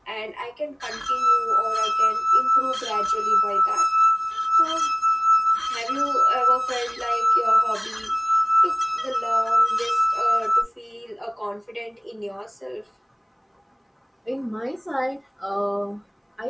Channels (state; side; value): identical; both; correlation 1.00